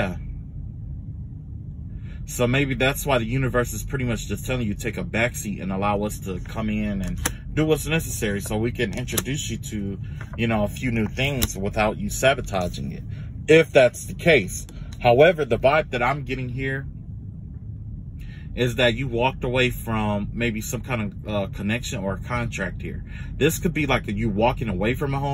So maybe that's why the universe is pretty much just telling you take a backseat and allow us to come in and do what's necessary so we can introduce you to, you know, a few new things without you sabotaging it, if that's the case. However, the vibe that I'm getting here is that you walked away from maybe some kind of connection or contract here. This could be like you walking away from a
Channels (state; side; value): identical; both; correlation 1.00